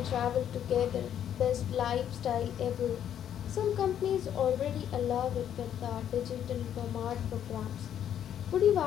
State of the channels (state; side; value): quieter; right; 9.9 dB